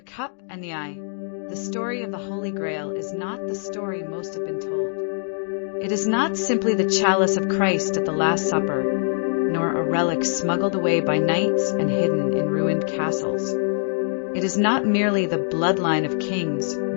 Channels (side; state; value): right; silent; digital silence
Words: Cup and the Eye. The story of the Holy Grail is not the story most have been told. It is not simply the chalice of Christ at the Last Supper, nor a relic smuggled away by knights and hidden in ruined castles. It is not merely the bloodline of kings